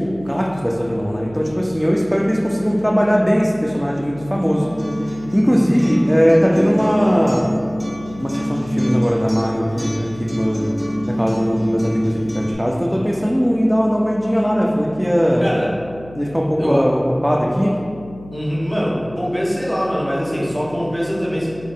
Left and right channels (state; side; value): noise; left; hum, 19 dB below the sound